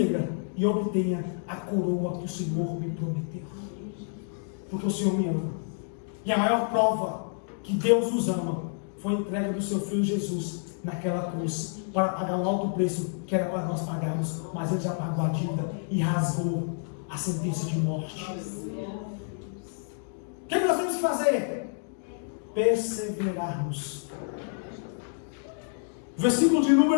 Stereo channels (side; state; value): right; silent; 59 dB below the other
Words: e obtenha a coroa que o Senhor me prometeu. Porque o Senhor me ama. E a maior prova que Deus nos ama foi a entrega do seu Filho Jesus naquela cruz, para pagar o alto preço que era para nós pagarmos, mas Ele já pagou a dívida e rasgou a sentença de morte. O que nós temos que fazer? Perseverarmos. Versículo de